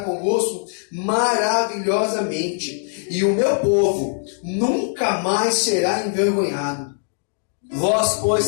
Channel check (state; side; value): silent; right; 60 dB below the other